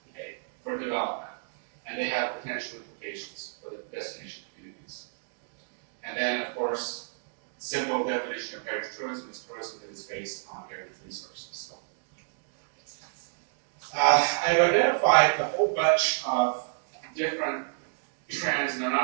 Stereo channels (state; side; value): silent; left; digital silence